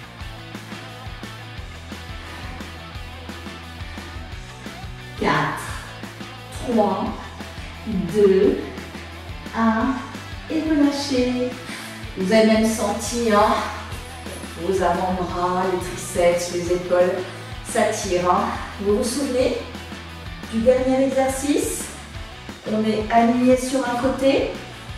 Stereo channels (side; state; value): both; identical; correlation 1.00